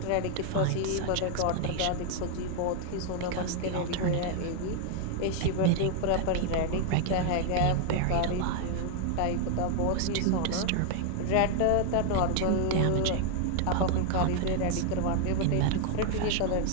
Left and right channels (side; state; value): both; different; correlation 0.00